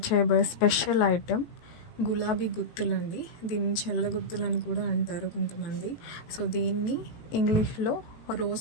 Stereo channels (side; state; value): right; late; 18 ms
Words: చేయబోయే స్పెషల్ ఐటెం గులాబీ గుత్తులండి. దీన్ని చెల్ల గుత్తులని కూడా అంటారు కొంతమంది. సో దీన్ని ఇంగ్లీష్లో